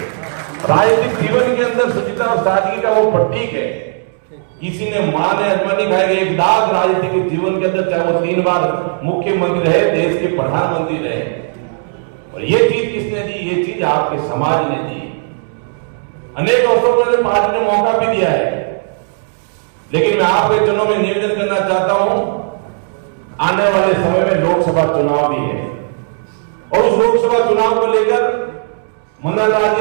राजनीतिक जीवन के अंदर शुचिता और सादगी का वो प्रतीक है। किसी ने मां ने अजमा नहीं खाएगा, एक दाग राजनीतिक जीवन के अंदर, चाहे वो 3 बार मुख्यमंत्री रहे, देश के प्रधानमंत्री रहे, और ये चीज किसने दी? ये चीज आपके समाज ने दी। अनेक अवसरों पर पार्टी ने मौका भी दिया है, लेकिन मैं आपके चुनाव में निवेदन करना चाहता हूं, आने वाले समय में लोकसभा चुनाव भी है और उस लोकसभा चुनाव को लेकर मंडल राज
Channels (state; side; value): silent; left; digital silence